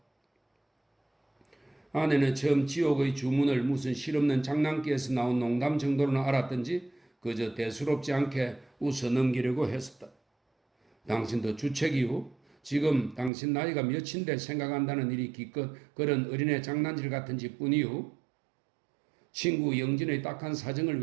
아내는 처음 지옥의 주문을 무슨 실없는 장난기에서 나온 농담 정도로는 알았던지 그저 대수롭지 않게 웃어 넘기려고 했었다. 당신도 주책이후? 지금 당신 나이가 몇인데 생각한다는 일이 기껏 그런 어린애 장난질 같은지 뿐이후? 친구 영진의 딱한 사정을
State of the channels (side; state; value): left; drops out; at 13.3 s